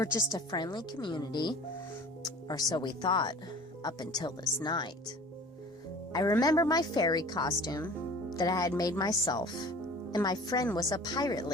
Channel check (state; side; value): normal; both; correlation 0.44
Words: just a friendly community, or so we thought, up until this night. I remember my fairy costume that I had made myself, and my friend was a pirate